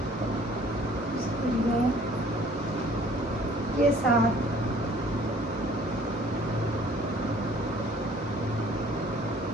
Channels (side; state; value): both; normal; correlation 0.55